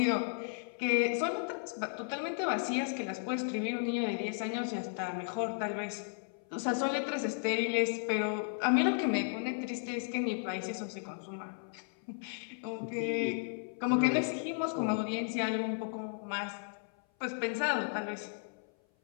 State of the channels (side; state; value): right; silent; 55 dB below the other